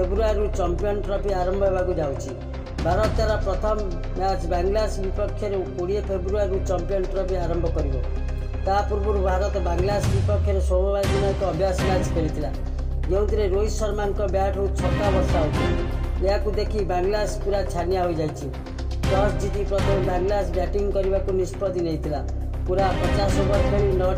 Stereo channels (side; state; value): both; identical; correlation 1.00